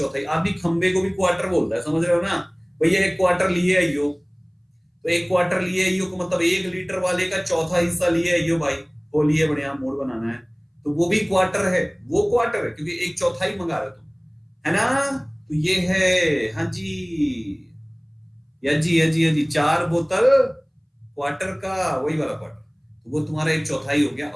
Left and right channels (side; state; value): both; identical; correlation 1.00